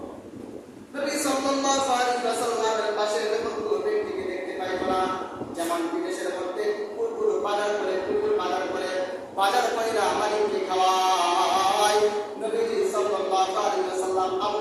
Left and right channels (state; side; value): identical; both; correlation 1.00